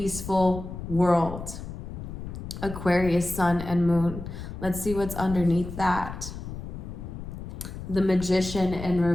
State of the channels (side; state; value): left; noise; rumble, 9 dB below the sound